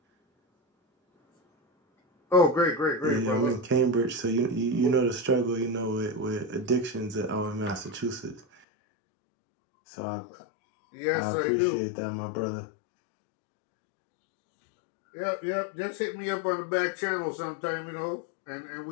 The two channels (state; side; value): drops out; right; at 8.5 s